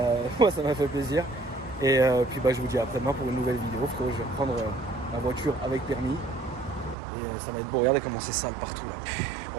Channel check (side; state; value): left; drops out; at 7.0 s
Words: Moi, ça m'a fait plaisir. Et puis, bah, je vous dis à après-demain pour une nouvelle vidéo. Frérot, je vais reprendre ma voiture avec permis. Et ça va être beau. Regardez comment c'est sale partout, là.